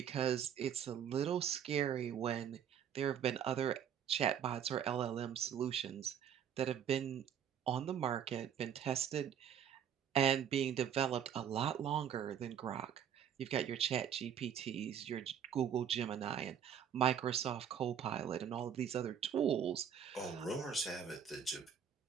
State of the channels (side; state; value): left; quieter; 8.6 dB